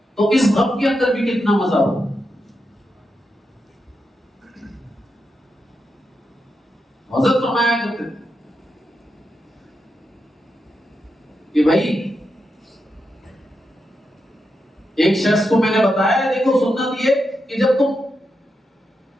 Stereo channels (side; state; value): both; normal; correlation 0.86